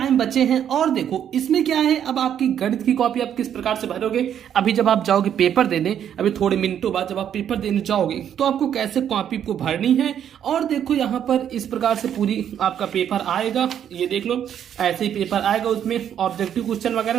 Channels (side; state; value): left; quieter; 9.4 dB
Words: बचे हैं। और देखो इसमें क्या है, अब आपकी गणित की कॉपी आप किस प्रकार से भरोगे। अभी जब आप जाओगे पेपर देने, अभी थोड़े मिनटों बाद जब आप पेपर देने जाओगे तो आपको कैसे कॉपी को भरनी है। और देखो यहाँ पर इस प्रकार से पूरी आपका पेपर आएगा, ये देख लो ऐसे ही पेपर आएगा। उसमें ऑब्जेक्टिव क्वेश्चन